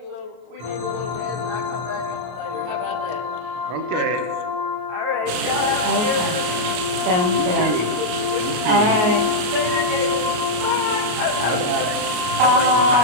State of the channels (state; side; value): late; left; 33 ms